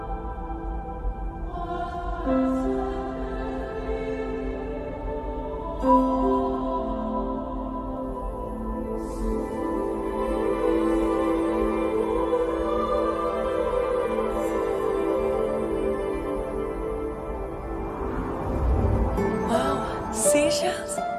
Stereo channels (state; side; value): identical; both; correlation 1.00